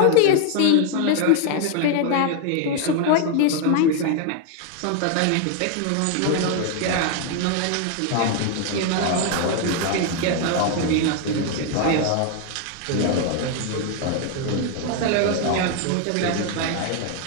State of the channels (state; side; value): different; both; correlation 0.01